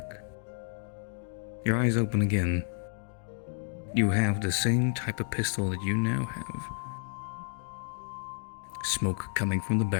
Your eyes open again. You have the same type of pistol that you now have. Smoke coming from the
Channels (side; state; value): right; silent; digital silence